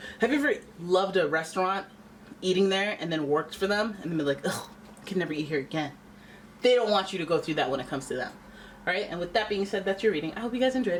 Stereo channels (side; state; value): both; identical; correlation 1.00